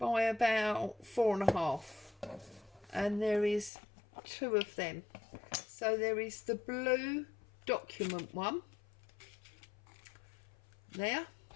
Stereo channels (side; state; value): right; drops out; at 3.7 s